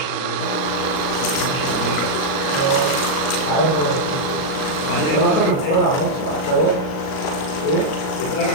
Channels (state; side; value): late; right; 38 ms